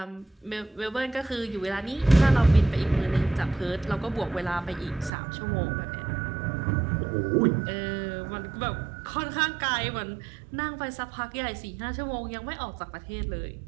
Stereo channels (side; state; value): left; drops out; at 5.1 s